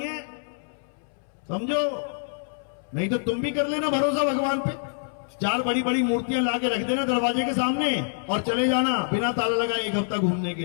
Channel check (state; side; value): silent; right; 61 dB below the other